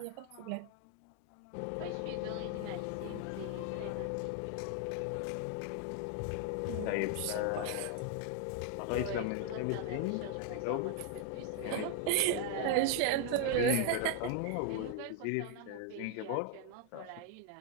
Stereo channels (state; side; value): different; both; correlation 0.00